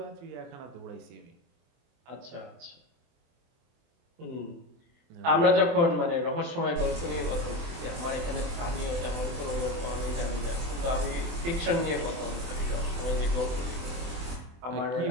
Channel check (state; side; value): late; left; 24 ms